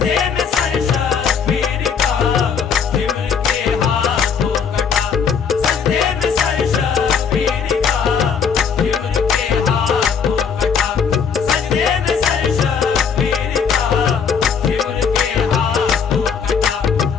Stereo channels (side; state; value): right; quieter; 6.5 dB